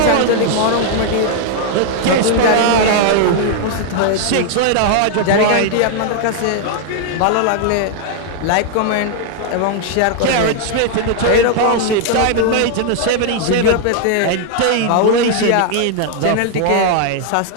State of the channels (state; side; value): different; both; correlation 0.00